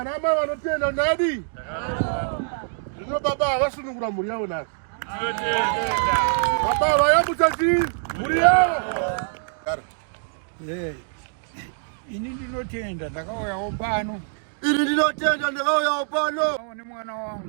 vanotenda ndadi. Zvino baba avasunungura mhuri yavo nhasi. Baba vayambutsa chii mhuri yavo. Ini ndinotenda ndakauyawo pano. Ini ndinotenda ndakauyawo pano. Nemwana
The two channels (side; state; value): left; silent; digital silence